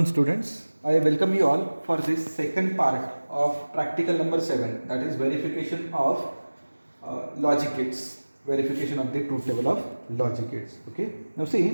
students. I welcome you all for this second part of practical number 7, that is verification of logic gates, verification of the truth table of logic gates. Okay. Now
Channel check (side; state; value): both; inverted; correlation -1.00